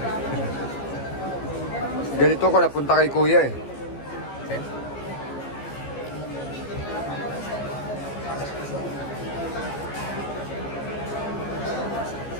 Ganito ko napunta kay kuya eh. Okay.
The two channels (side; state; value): right; late; 14 ms